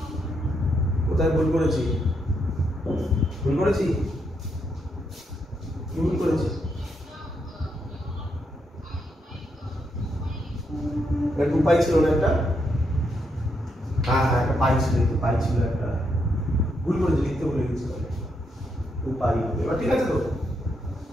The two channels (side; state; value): both; normal; correlation 0.79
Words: কোথায় ভুল করেছি? ভুল করেছি? কি ভুল করেছি? টু পাই ছিল না একটা? হ্যাঁ হ্যাঁ একটা পাই ছিল, একটু পাই ছিল একটা, ভুল করেছি, লিখতে ভুলে গেছি। টু পাই হবে, এবার ঠিক আছে তো?